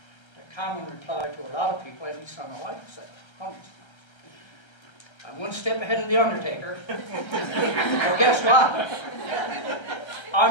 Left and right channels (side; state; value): right; late; 1.3 ms